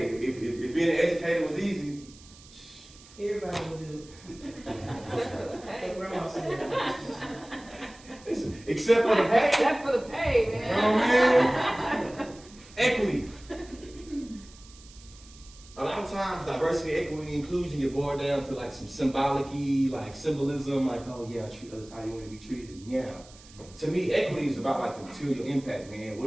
if being an educator was easy, Everybody will do it. Like Grandma said. listen, except for the pay. Except for the pay, You man. know what I mean? Equity. A lot of times, diversity, equity, and inclusion get boiled down to like some symbolic-y, like symbolism, like, oh yeah, treat others how you want to be treated. Yeah. To me, equity is about like the material impact, man.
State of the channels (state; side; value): noise; right; hiss, 22 dB below the sound